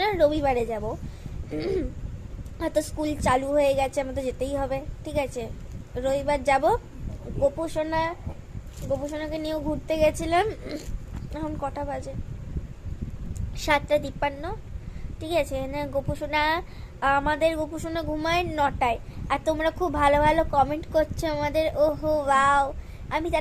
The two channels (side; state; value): both; identical; correlation 1.00